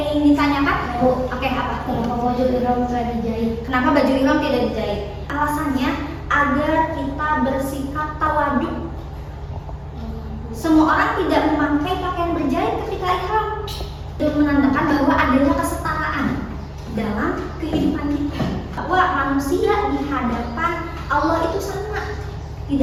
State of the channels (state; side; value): identical; both; correlation 1.00